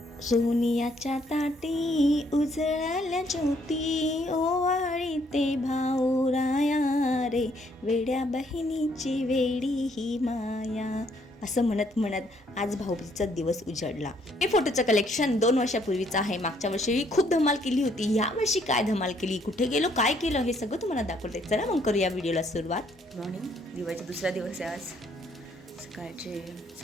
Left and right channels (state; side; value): normal; both; correlation 0.68